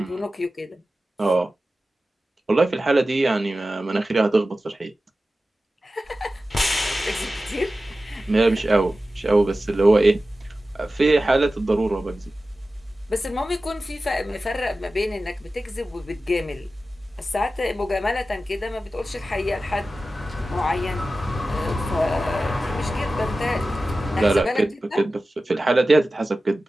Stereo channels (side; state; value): both; normal; correlation 0.95